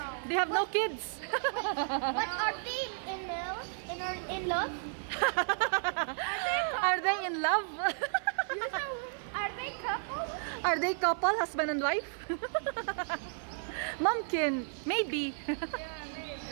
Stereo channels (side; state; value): left; silent; 56 dB below the other